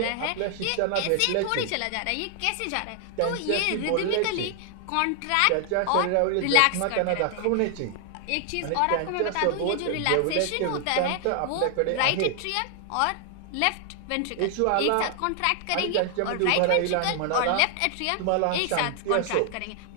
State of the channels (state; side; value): different; both; correlation 0.00